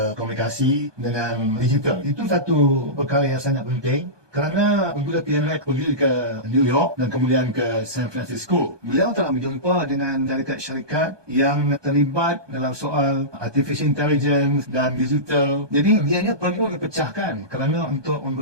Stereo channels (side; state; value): left; late; 1.2 ms